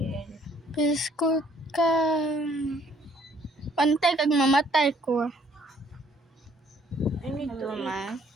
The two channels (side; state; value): both; normal; correlation 0.62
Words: Biskot ka. Pantay kag mamatay ko. I need to eat.